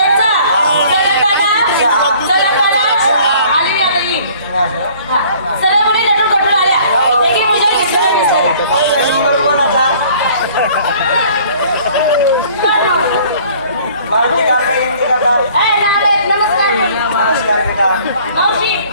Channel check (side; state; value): both; inverted; correlation -0.54